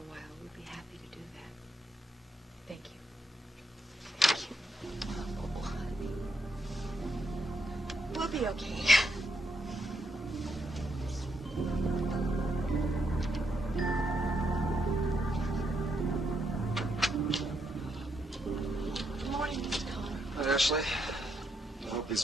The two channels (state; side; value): normal; both; correlation 0.78